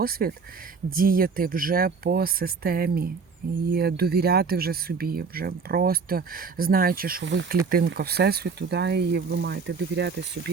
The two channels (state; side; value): quieter; left; 5.2 dB